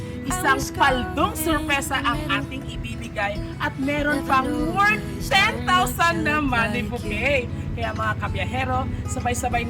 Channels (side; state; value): both; identical; correlation 1.00